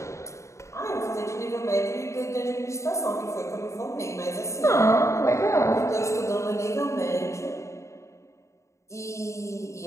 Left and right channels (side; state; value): right; late; 0.14 ms